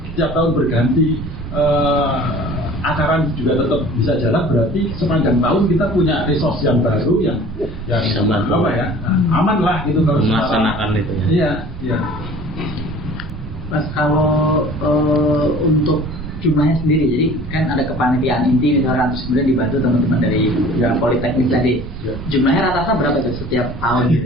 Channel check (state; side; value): noise; right; rumble, 11 dB below the sound